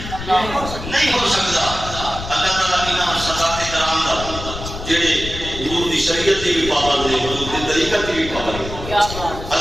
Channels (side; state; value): left; noise; rumble, 9 dB below the sound